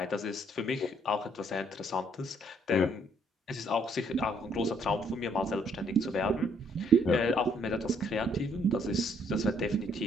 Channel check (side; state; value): both; normal; correlation 0.67